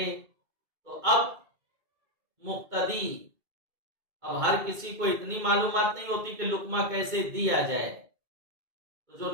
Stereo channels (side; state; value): left; late; 2.2 ms